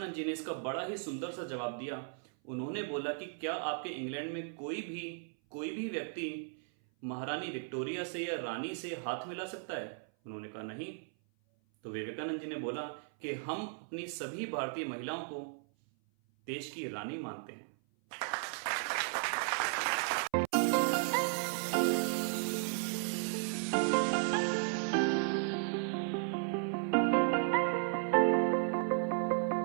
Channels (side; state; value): left; silent; 54 dB below the other